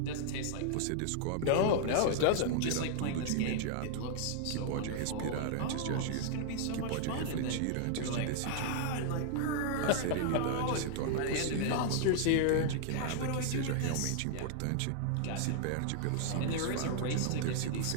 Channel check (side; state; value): both; different; correlation -0.01